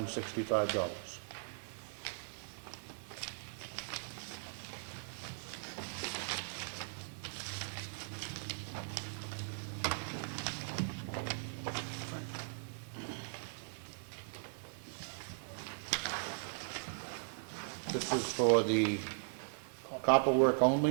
This is for the copper work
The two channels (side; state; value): left; silent; 52 dB below the other